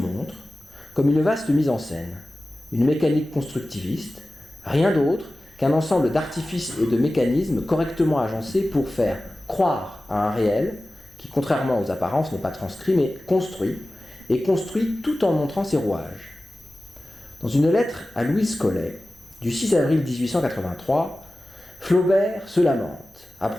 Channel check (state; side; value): normal; both; correlation 0.96